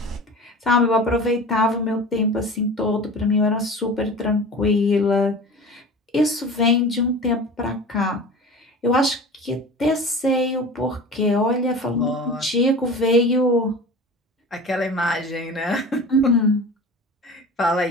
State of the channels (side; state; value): both; normal; correlation 0.36